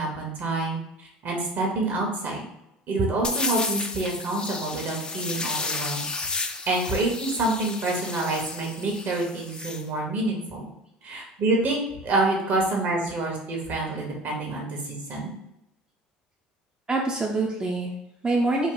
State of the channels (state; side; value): normal; both; correlation 0.37